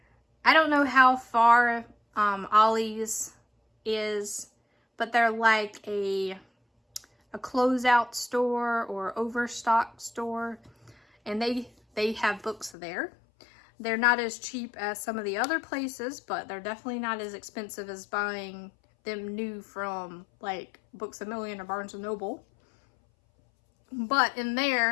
I don't know how far Ollie's is, but they're like a closeout store or overstock store, and they have books there. They're not as cheap as some of the other places, but they're definitely not as expensive as buying them new from like Books A Million or Barnes & Noble. But in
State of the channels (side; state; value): right; drops out; at 12.8 s